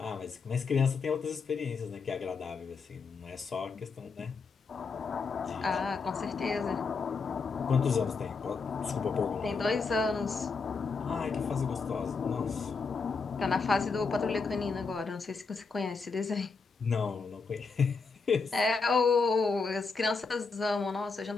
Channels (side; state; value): right; quieter; 4.7 dB